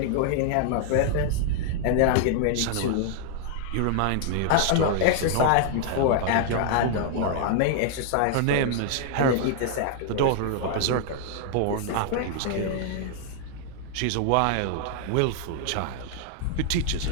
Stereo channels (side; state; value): both; different; correlation -0.01